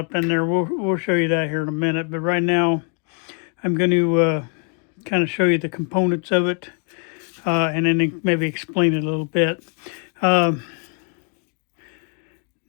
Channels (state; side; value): quieter; right; 36.4 dB